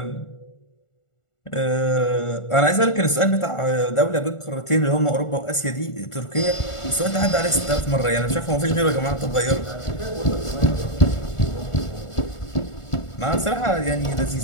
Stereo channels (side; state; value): right; late; 1.4 ms